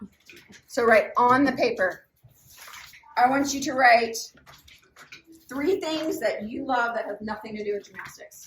So write on the paper. I want you to write 3 things that you love that have nothing to do with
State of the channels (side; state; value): both; identical; correlation 1.00